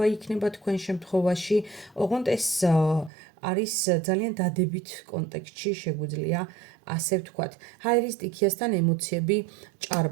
იქნება თქვენ შემთხვევაში. ოღონდ ეს არის ძალიან დადებით კონტექსტში, შეგვიძლია ასე ვთქვათ. ჰაერის სტიქიასთან ემოციები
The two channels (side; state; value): left; drops out; at 3.1 s